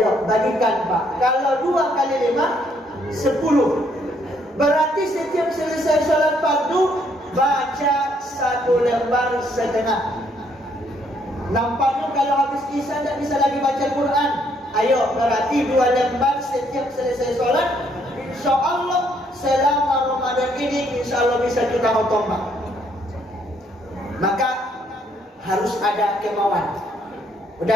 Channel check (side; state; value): both; normal; correlation 0.69